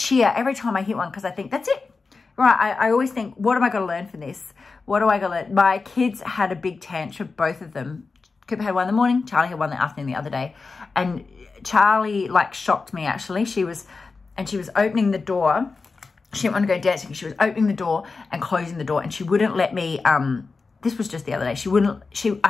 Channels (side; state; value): right; quieter; 4.3 dB